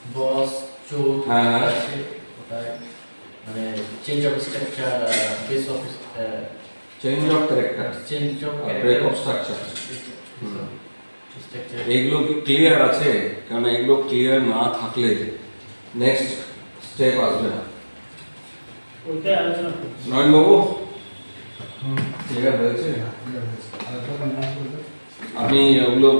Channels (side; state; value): both; inverted; correlation -1.00